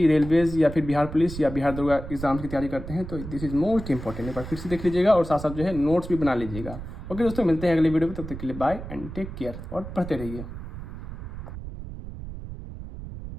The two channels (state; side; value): noise; right; rumble, 10 dB below the sound